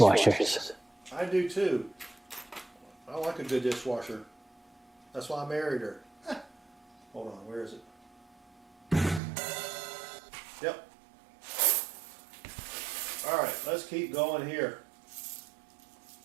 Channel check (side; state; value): left; drops out; at 9.2 s